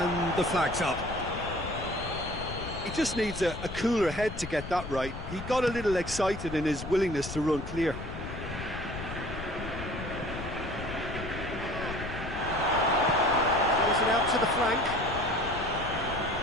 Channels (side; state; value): left; noise; rumble, 9 dB below the sound